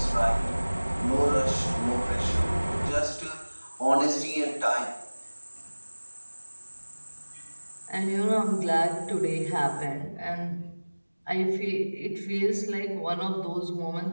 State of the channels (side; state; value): both; inverted; correlation -1.00